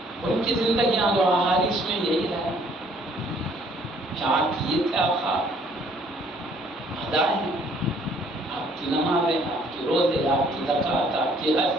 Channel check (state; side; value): normal; both; correlation 0.61